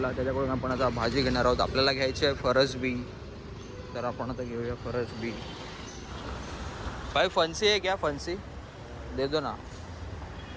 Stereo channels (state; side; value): identical; both; correlation 1.00